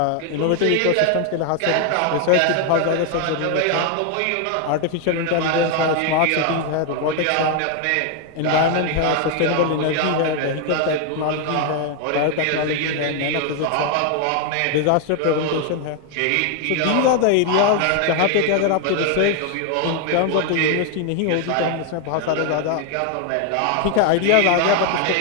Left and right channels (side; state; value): both; different; correlation 0.01